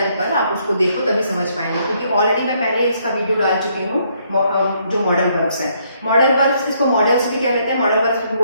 पर, आप उसको देखो तभी समझ पाएंगे, क्योंकि ऑलरेडी मैं पहले इसका वीडियो डाल चुकी हूँ जो मॉडल वर्ब्स है। मॉडल वर्ब्स इसको मॉडल्स भी कह लेते हैं, मॉडल वर्ब्स भी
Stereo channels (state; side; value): inverted; both; correlation -0.70